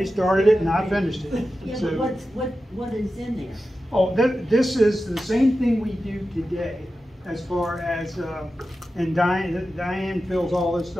started it and I finished it. Yeah, so, but what is in there? Oh, this is the same thing we do today, as far as, and Diane fills all this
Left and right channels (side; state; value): both; normal; correlation 0.92